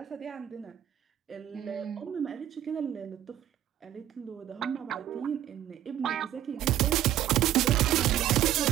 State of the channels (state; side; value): quieter; left; 11.7 dB